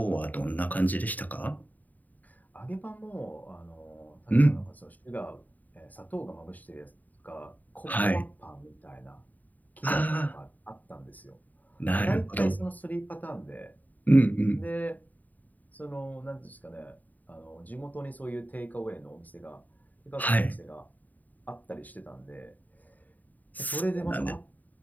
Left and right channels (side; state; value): right; late; 0.081 ms